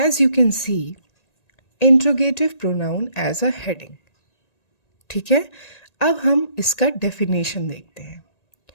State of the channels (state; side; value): late; right; 1.9 ms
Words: you can see, interrogative pronoun as a heading. ठीक है, अब हम इसका डेफिनेशन देखते हैं।